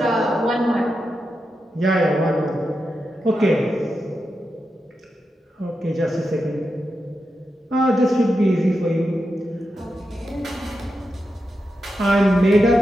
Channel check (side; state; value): both; normal; correlation 0.88